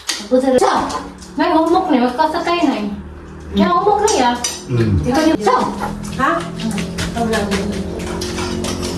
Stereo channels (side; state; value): both; identical; correlation 1.00